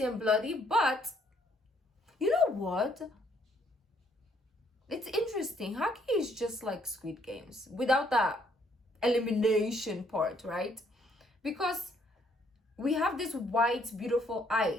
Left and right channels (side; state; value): both; normal; correlation 0.67